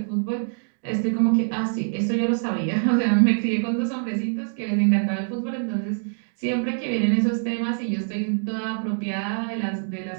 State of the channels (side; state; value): left; silent; digital silence